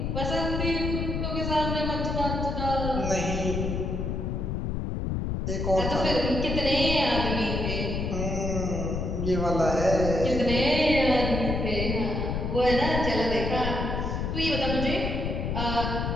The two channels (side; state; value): left; noise; rumble, 1 dB below the sound